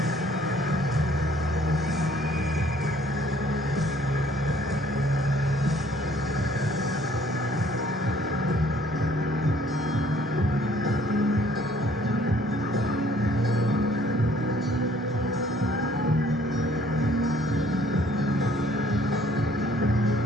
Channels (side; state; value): both; normal; correlation 0.60